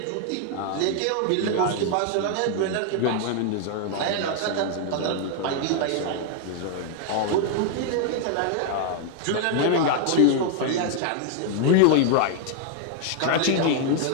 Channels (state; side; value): different; both; correlation 0.00